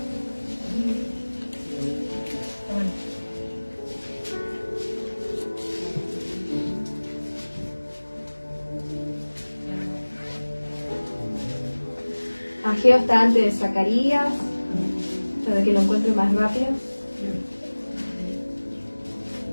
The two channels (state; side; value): inverted; both; correlation -1.00